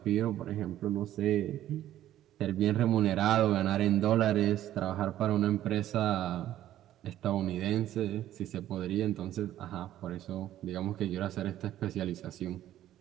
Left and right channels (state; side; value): quieter; left; 12.7 dB